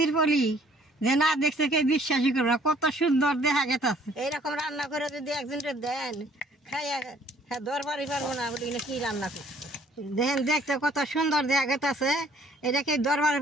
পলি যে না দেখছে কে বিশ্বাসই করবে না, কত সুন্দর দেখা গেছে। এইরকম রান্না করে যদি একজনকে দেন খাইয়া হ্যাঁ দরবারই পারবো না বলি কি রান্না করছে দেখেন, দেখতে কত সুন্দর দেখা গেছে। এটাকে দরবারে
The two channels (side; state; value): both; normal; correlation 0.60